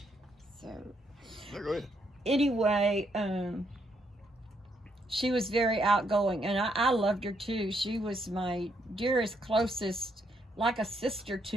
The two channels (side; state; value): both; normal; correlation 0.75